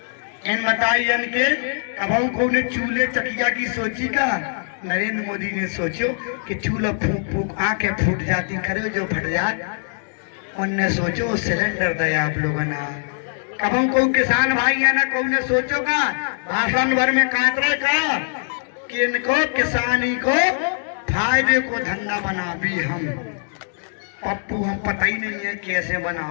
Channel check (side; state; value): right; silent; digital silence